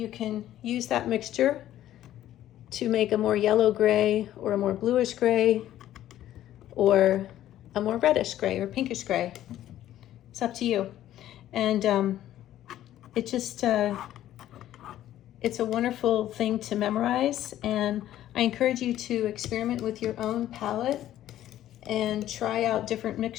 can use that mixture to make a more yellow gray or a more bluish gray or a more reddish gray or pinkish gray. It's up to you. And it just, it's a wonderful thing to memorize, and I encourage you to experiment with your own palette and try out different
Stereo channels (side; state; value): right; quieter; 12.8 dB